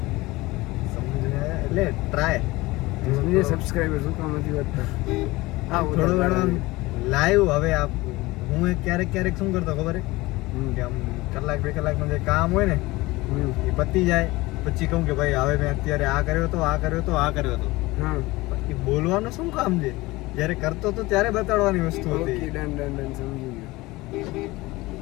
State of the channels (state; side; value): quieter; right; 20.6 dB